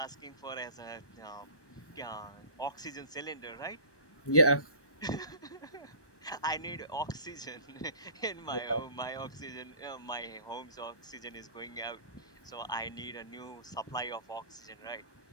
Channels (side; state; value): right; late; 1.2 ms